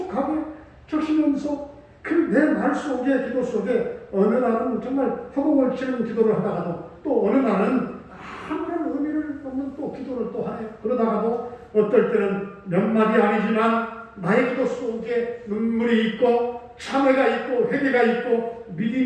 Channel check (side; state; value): both; identical; correlation 1.00